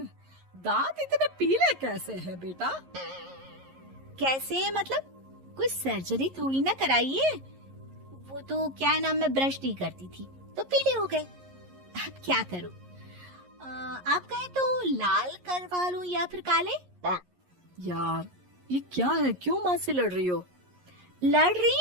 इतने पीले कैसे हैं बेटा? कैसे मतलब? कोई सर्जरी थोड़ी ना कराइए। वो तो क्या नाम, मैं ब्रश नहीं करती थी तो पीले हो गए। अब क्या करूं? आप कहे तो लाल करवा लूं या फिर काले? यार ये क्या है, क्यों माँ से लड़ रही हो? लड़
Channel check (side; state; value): left; late; 11 ms